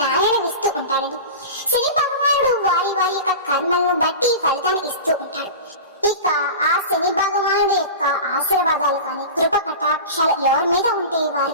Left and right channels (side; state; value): both; inverted; correlation -0.31